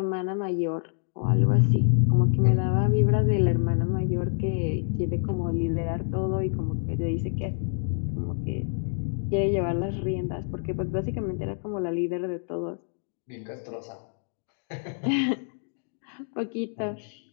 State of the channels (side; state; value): right; silent; 57 dB below the other